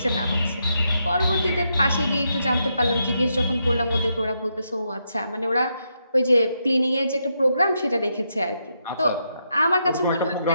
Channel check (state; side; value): inverted; both; correlation -0.81